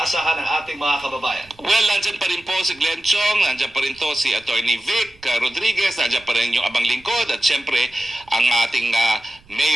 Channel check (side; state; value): right; noise; rumble, 28 dB below the sound